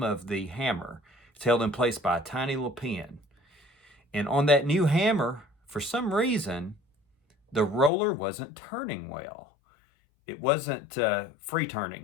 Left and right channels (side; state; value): right; drops out; at 7.9 s